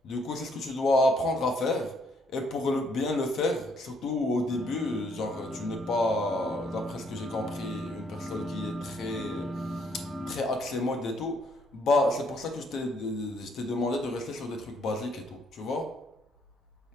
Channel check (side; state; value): both; normal; correlation 0.69